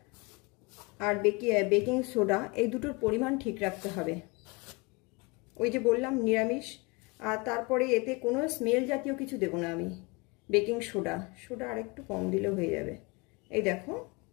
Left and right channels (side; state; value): right; quieter; 27.1 dB